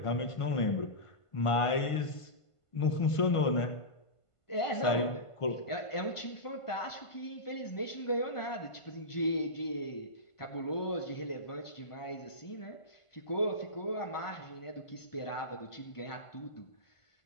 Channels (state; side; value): late; right; 1.5 ms